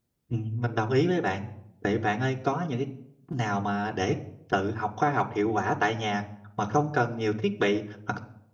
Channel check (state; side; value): identical; both; correlation 1.00